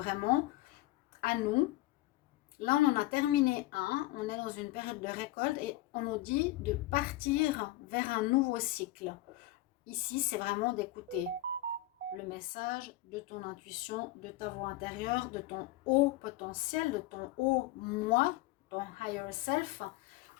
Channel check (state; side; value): quieter; right; 15.9 dB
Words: à nous. Là, on en a terminé un. On est dans une période de récolte et on nous dit de partir vers un nouveau cycle. Ici, c'est vraiment d'écouter le message de ton intuition, de ta voix intérieure, de ton haut potentiel, de ton haut moi, ton higher self.